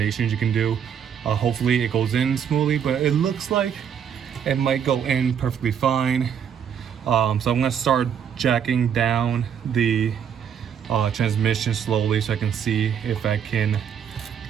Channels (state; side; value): quieter; left; 8.1 dB